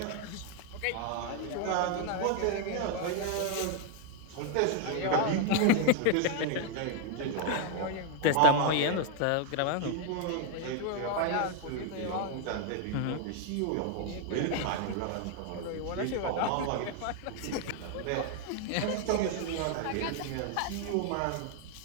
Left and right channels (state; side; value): different; both; correlation 0.00